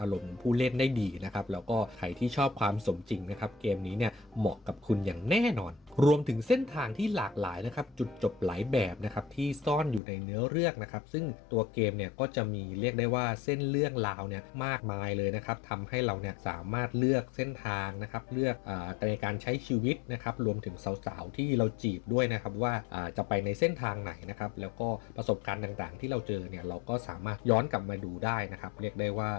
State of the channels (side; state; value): right; drops out; at 10.0 s